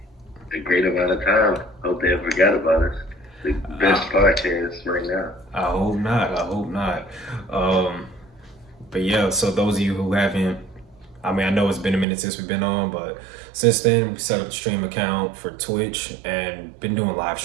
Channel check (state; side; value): drops out; left; at 12.1 s